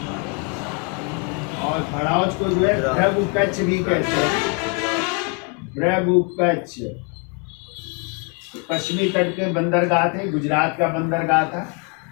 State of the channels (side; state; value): right; quieter; 36.0 dB